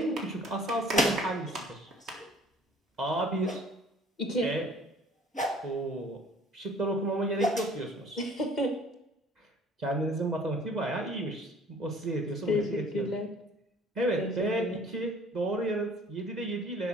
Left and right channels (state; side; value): normal; both; correlation 0.53